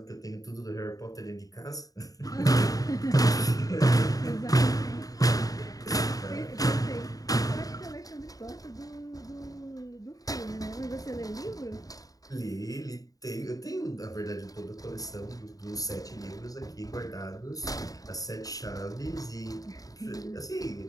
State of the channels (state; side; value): late; right; 0.18 ms